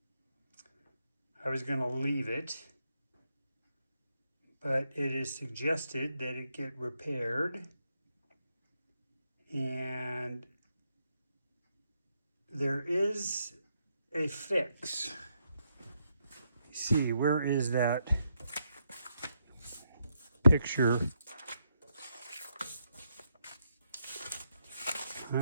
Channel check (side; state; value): both; inverted; correlation -0.80